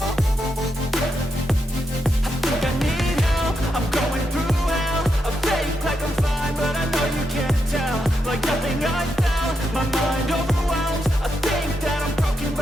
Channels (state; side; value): normal; both; correlation 0.83